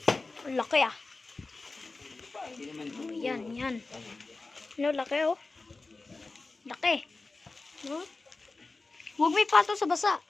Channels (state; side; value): quieter; right; 3.6 dB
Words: Ang laki ah. Hindi naman ito. Oh, yan. No, laki oh. Laki. No? Huwag may pato sa basa.